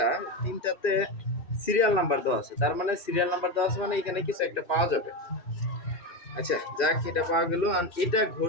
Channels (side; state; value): right; late; 2.5 ms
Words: 3টাতে সিরিয়াল নাম্বার দেওয়া আছে, তার মানে সিরিয়াল নাম্বার দেওয়া আছে মানে এখানে কিছু একটা পাওয়া যাবে। আচ্ছা, যাক, এটা পাওয়া গেল। আর এটা